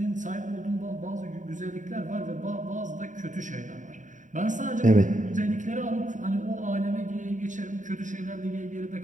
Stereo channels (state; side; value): late; left; 0.36 ms